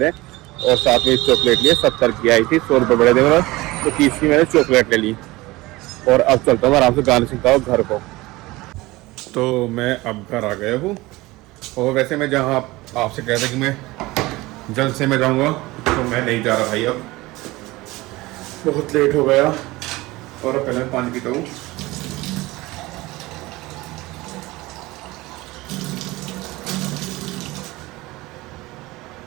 है, और साथ में चॉकलेट लिए 70 की आई थी, 100 रुपये बड़े थे, तो 30 की मैंने चॉकलेट ले ली। और अब चलता हूँ आराम से गाने सुनता हूँ घर को। तो मैं अब घर आ गया हूँ, और वैसे मैं जहाँ आपसे कहता कि मैं जल्द से मैं जाऊँगा, तो मैं नहीं जा रहा भाई, अब बहुत लेट हो गया। और अब पहले मैं पानी पीता हूँ।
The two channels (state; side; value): quieter; left; 20.3 dB